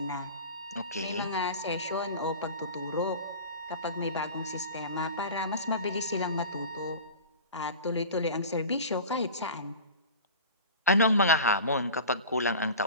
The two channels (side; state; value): both; inverted; correlation -0.36